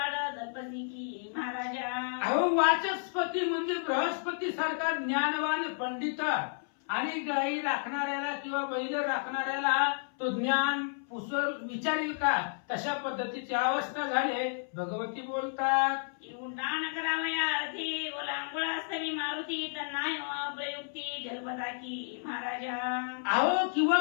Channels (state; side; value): silent; right; 57 dB below the other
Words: जपसी की महाराजा. अहो वाचस्पती म्हणजे बृहस्पती सारखा ज्ञानवान पंडित आणि गाई राखणाऱ्याला किंवा बैल राखणाऱ्याला तो ज्ञान पुसर विचारेल का, तशा पद्धतीची अवस्था झाले, भगवती बोलतात. उड्डाण करावया अर्थी ओलांगुळास्तवी मारुती, तन्नाय प्रयुक्ती जलपदा की महाराजा. अहो किंवा